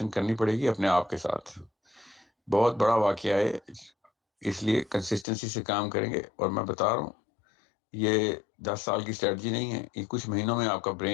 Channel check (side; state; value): right; drops out; at 5.2 s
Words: کرنی پڑے گی اپنے آپ کے ساتھ. بہت بڑا واقعہ ہے، اس لیے کنسسٹنسی سے کام کریں گے. اور میں بتا رہا ہوں یہ 10 سال کی اسٹریٹجی نہیں ہے. یہ کچھ مہینوں میں آپ کا